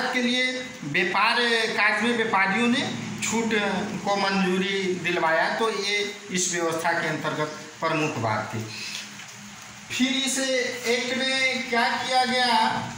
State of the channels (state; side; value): identical; both; correlation 1.00